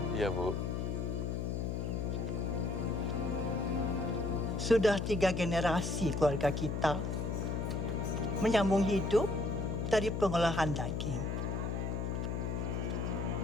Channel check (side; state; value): left; noise; hum, 1 dB below the sound